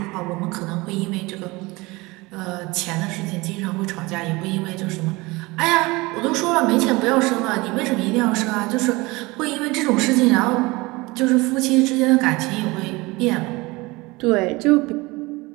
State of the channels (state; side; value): quieter; left; 23.0 dB